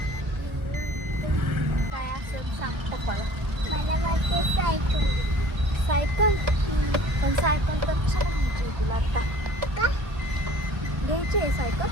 सायकल पण सायकल तर कशाला घ्यायची तुला आता? का घ्यायची आहे सायकल?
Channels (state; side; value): late; left; 1.2 ms